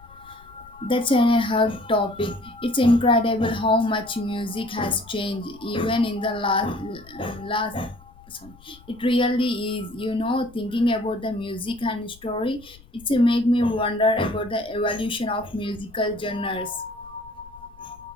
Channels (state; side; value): noise; left; rumble, 23 dB below the sound